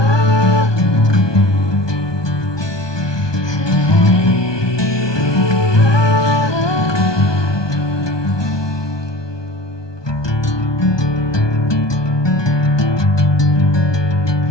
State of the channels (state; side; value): late; right; 1.2 ms